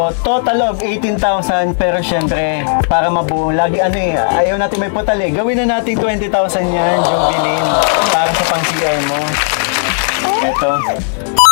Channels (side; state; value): right; silent; digital silence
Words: total of 18,000 pero syempre, para mabuo, lagi ayaw natin may putal eh. Gawin na natin 20,000 yan, Jovelyn, para sa pang-CR mo. Ito,